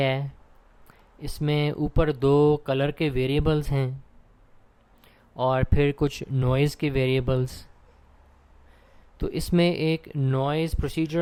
है, इसमें ऊपर दो कलर के वेरिएबल्स हैं और फिर कुछ नॉइज़ के वेरिएबल्स। तो इसमें एक नॉइज़,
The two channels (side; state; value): both; identical; correlation 1.00